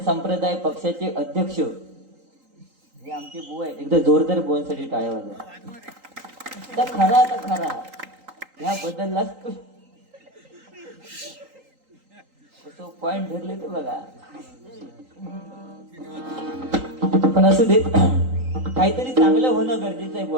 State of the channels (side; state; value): left; late; 3.8 ms